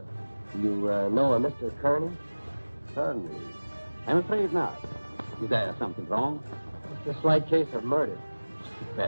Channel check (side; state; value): both; inverted; correlation -1.00